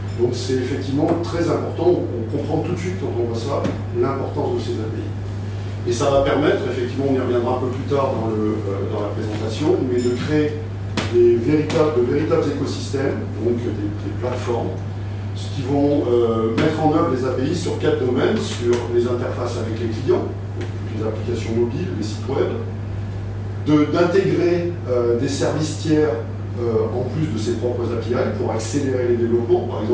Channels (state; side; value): identical; both; correlation 1.00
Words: Donc c'est effectivement très important, on comprend tout de suite quand on voit ça, l'importance de ces API. Et ça va permettre, effectivement, on y reviendra un peu plus tard dans la présentation, mais de créer de véritables écosystèmes, donc des plateformes, qui vont mettre en œuvre les API sur 4 domaines, sur les interfaces avec les clients, les applications mobiles, les sites web, d'intégrer des services tiers en plus de ses propres API pour accélérer les développements. Par